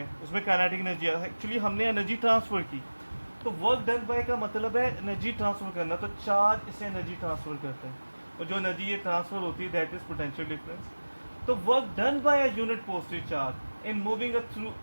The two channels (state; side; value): inverted; both; correlation -1.00